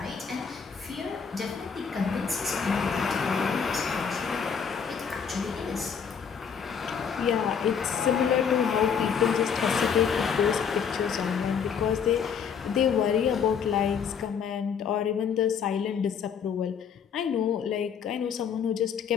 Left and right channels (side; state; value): right; quieter; 6.9 dB